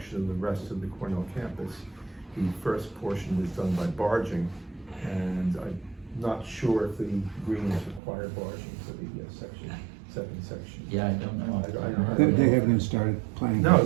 of the rest of the Cornell campus. The first portion was done by barging, and I'm not sure if the greens require barging for the second section. Yeah, I don't know. I don't know. They haven't even started planning.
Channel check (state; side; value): drops out; left; at 8.0 s